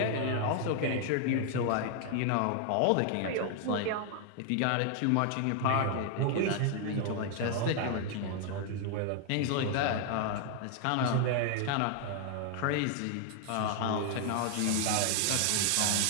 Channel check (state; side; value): different; both; correlation 0.00